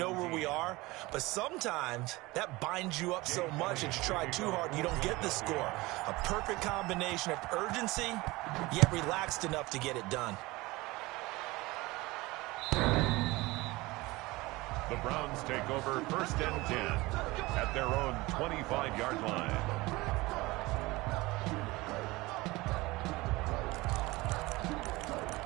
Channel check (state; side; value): quieter; left; 21.3 dB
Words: where we are. But sometimes that binds you up so much that you try too hard and you don't get the score. A perfect combination of urgency, yet relaxed enough to get it done. The Browns take over 1st and 10 at their own 25-yard line.